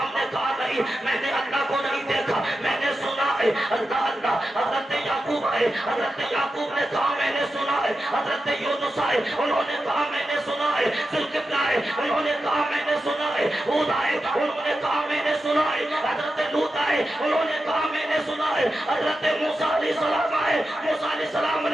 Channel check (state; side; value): normal; both; correlation 0.90